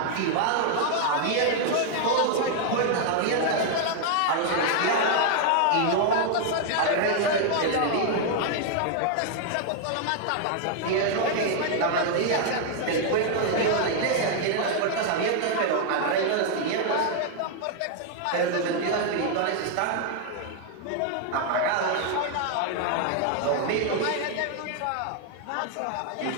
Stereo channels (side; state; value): both; different; correlation 0.00